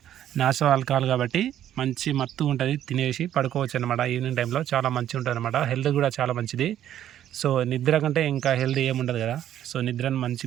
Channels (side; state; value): left; quieter; 11.3 dB